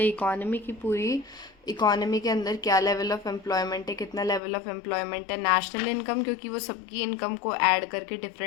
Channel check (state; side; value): drops out; right; at 4.4 s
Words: की पूरी इकोनॉमी के अंदर क्या लेवल ऑफ एम्प्लॉयमेंट है, कितना लेवल ऑफ एम्प्लॉयमेंट है। नेशनल इनकम, क्योंकि वो सबकी इनकम को ऐड करके